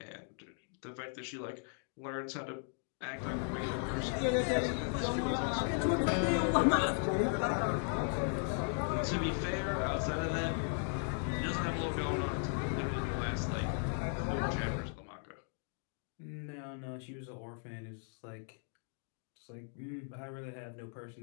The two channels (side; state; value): right; silent; 53 dB below the other